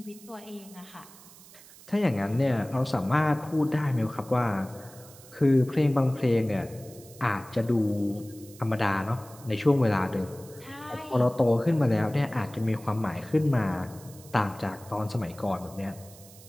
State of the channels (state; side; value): noise; right; hiss, 21 dB below the sound